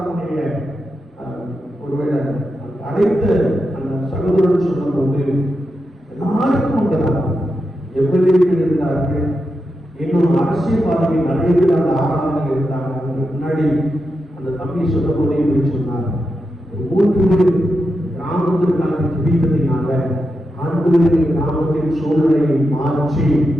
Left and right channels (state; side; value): normal; both; correlation 0.88